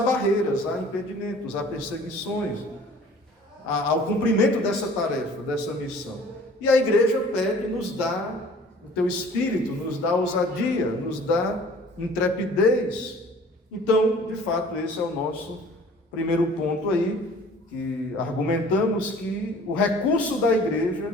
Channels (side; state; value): both; normal; correlation 0.50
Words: há impedimentos, há perseguições ao cumprimento dessa tarefa, dessa missão. E a igreja pede, nos dá o teu Espírito, nos dá ousadia, nos dá intrepidez. Então, de fato, esse é o nosso primeiro ponto aí, que argumentamos que o recurso da